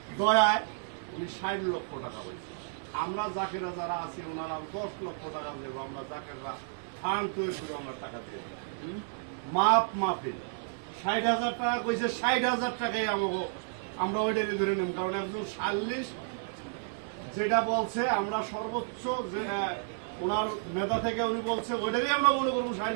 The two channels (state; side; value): silent; left; 57 dB below the other